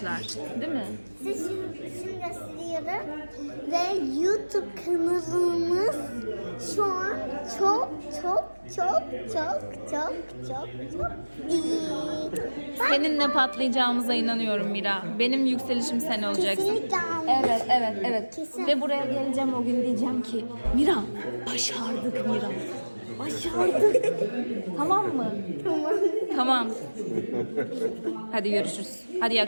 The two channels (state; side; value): inverted; both; correlation -1.00